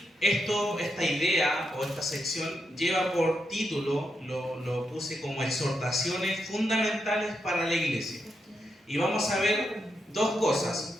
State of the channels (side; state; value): both; normal; correlation 0.83